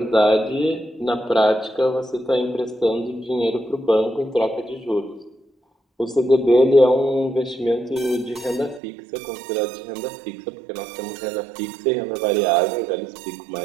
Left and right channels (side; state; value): left; drops out; at 8.8 s